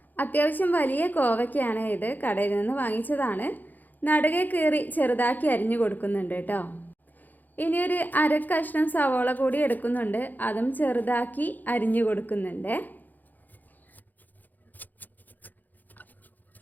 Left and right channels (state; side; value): late; right; 0.084 ms